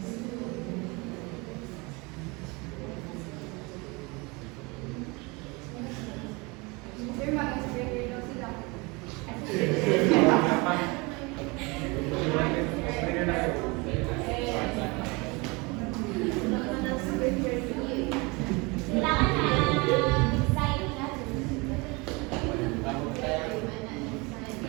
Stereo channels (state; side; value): quieter; left; 26.9 dB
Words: Sir, mag-explain daw sila.